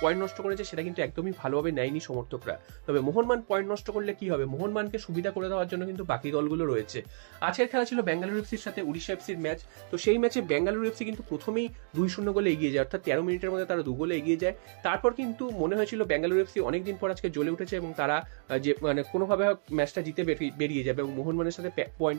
পয়েন্ট নষ্ট করেছে সেটা কিন্তু একদমই ভালোভাবে নেয়নি সমর্থকরা। তবে মোহনবাগান পয়েন্ট নষ্ট করলে কী হবে, মোহনবাগানকে সুবিধা করে দেওয়ার জন্য কিন্তু বাকি দলগুলো রয়েছে। আজকের খেলা ছিল বেঙ্গালুরু এফসির সাথে ওড়িশা এফসির ম্যাচ। তো সেই ম্যাচে বেঙ্গালুরু এফসি কিন্তু প্রথমেই 2-0 গোলে এগিয়ে যায়, অর্থাৎ 13 মিনিটের মধ্যে তারা 2 গোলে এগিয়ে যায়। তারপর কিন্তু মনে হয়েছিল বেঙ্গালুরু এফসি অনেকদিন পর আজকে জ্বলে উঠেছে এবং তারা যে কোনোভাবে ম্যাচটা জিতে বেরিয়ে যাবে এবং মোহনবাগানের সাথে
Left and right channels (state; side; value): silent; left; digital silence